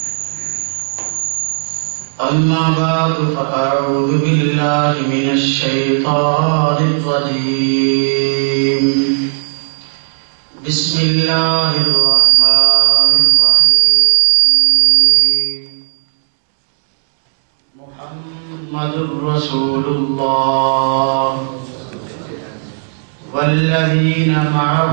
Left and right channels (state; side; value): silent; left; digital silence